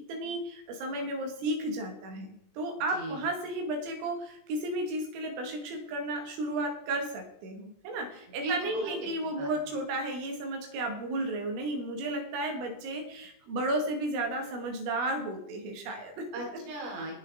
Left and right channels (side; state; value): left; late; 20 ms